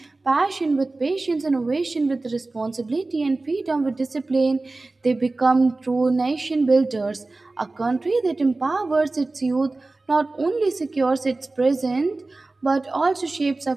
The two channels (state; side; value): quieter; left; 3.2 dB